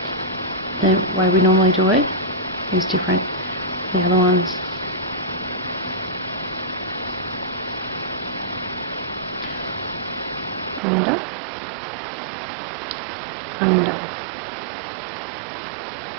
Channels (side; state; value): left; drops out; at 10.8 s